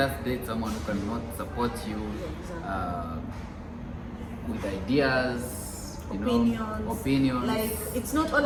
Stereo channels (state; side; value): identical; both; correlation 1.00